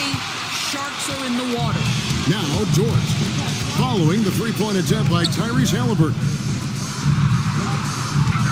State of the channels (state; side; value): identical; both; correlation 1.00